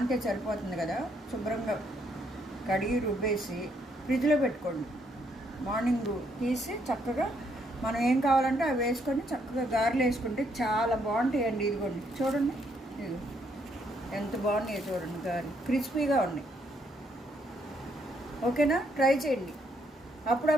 సరిపోతుంది కదా. శుభ్రంగా కడిగి రుబ్బేసి ఫ్రిడ్జ్లో పెట్టుకోండి. మార్నింగ్ తీసి చక్కగా మనం ఏం కావాలంటే అవి వేసుకొని చక్కగా గారెలు వేసుకుంటే చాలా బాగుంటాయండి. ఇదిగోండి, చూడండి, ఇది ఎంత బాగున్నాయో చూడండి. గారెలు క్రిస్పీగా ఉన్నాయి. ఓకేనా? ట్రై చేయండి.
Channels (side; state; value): both; normal; correlation 0.72